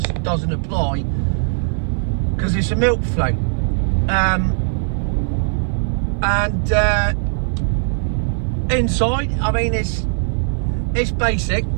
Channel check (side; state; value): left; silent; 57 dB below the other